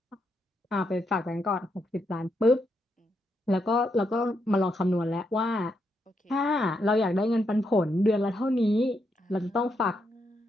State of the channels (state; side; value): normal; both; correlation 0.80